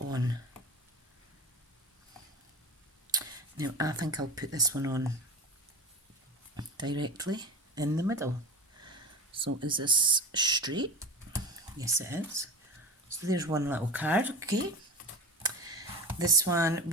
Now I think I'll put this one on directly in the middle. So is this straight? Yes, it is. So there's one little card, okay. This one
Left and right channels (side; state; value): both; normal; correlation 0.32